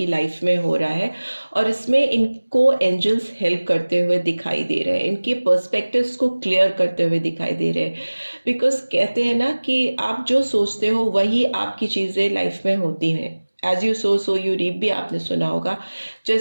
लाइफ में हो रहा है, और इसमें इनको एंजल्स हेल्प करते हुए दिखाई दे रहे हैं, इनके पर्सपेक्टिव्स को क्लियर करते हुए दिखाई दे रहे हैं। बिकॉज कहते हैं ना कि आप जो सोचते हो वही आपकी चीज़ें लाइफ में होती हैं। As you sow you reap भी आपने सुना होगा,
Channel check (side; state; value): both; inverted; correlation -1.00